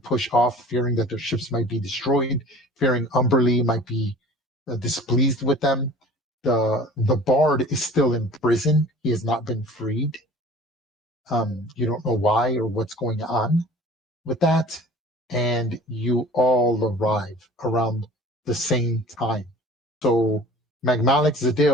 push off, fearing that their ships might be destroyed, fearing Umberlee might be displeased with them. The Bard is still in prison. He has not been freed. You don't know why or what's going on with that, and you all arrive around the same time. So Magmalik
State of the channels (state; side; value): normal; both; correlation 0.44